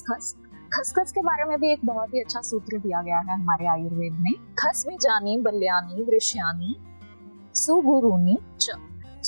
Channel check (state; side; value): inverted; both; correlation -1.00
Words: खसखस के बारे में भी एक बहुत ही अच्छा सूत्र दिया गया है हमारे आयुर्वेद में, खस बीजानी बल्यानी वृष्यानी सुगुरुनी च।